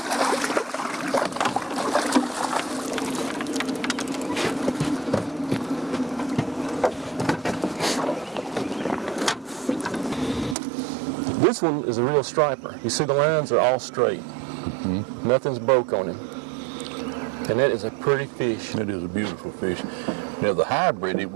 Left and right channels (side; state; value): left; drops out; at 10.6 s